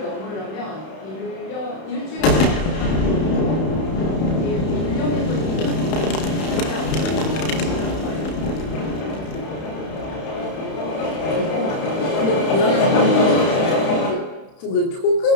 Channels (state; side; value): late; right; 31 ms